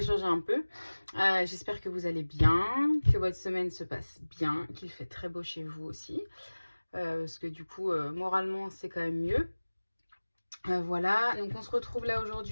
changer un peu. J'espère que vous allez bien, que votre semaine se passe bien, qu'il fait très beau chez vous aussi. Parce que du coup, moralement c'est quand même mieux. Voilà, donc on se retrouve là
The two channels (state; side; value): inverted; both; correlation -1.00